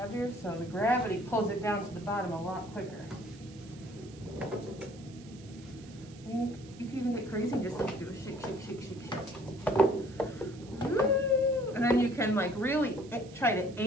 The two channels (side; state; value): right; noise; hiss, 23 dB below the sound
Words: so the gravity pulls it down to the bottom a lot quicker. You can even get crazy and just like do a shake, shake, shake, shake, shake. Ooh. And then you can like really try to